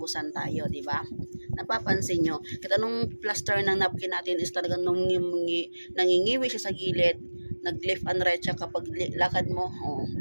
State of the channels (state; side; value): inverted; both; correlation -1.00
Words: tayo, di ba? Napapansin nyo, kahit anong plaster ng napkin natin is talagang nangingiwi siya sa gilid, nag-left and right siya kapag lakad mo,